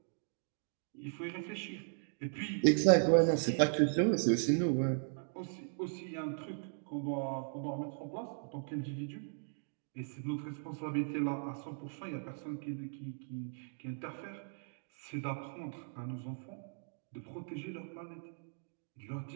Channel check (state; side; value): silent; left; digital silence